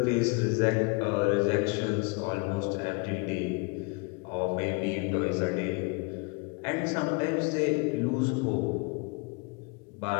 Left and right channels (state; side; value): quieter; right; 30.3 dB